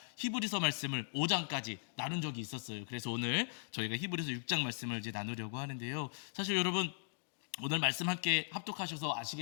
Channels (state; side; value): silent; right; digital silence